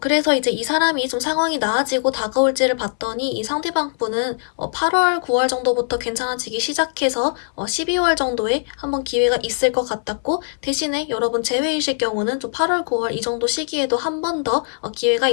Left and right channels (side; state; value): right; silent; 65 dB below the other